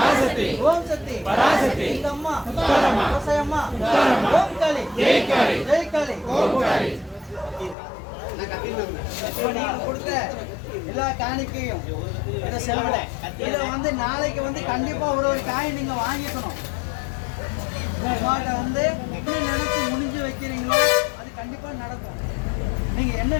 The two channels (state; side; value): drops out; right; at 7.8 s